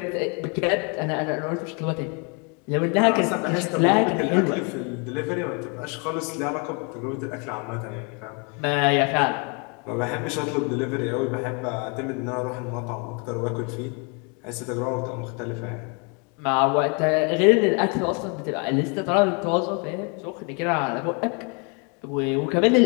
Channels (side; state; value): right; quieter; 34.6 dB